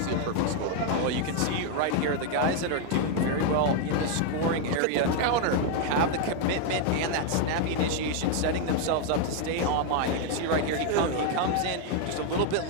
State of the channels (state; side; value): different; both; correlation 0.01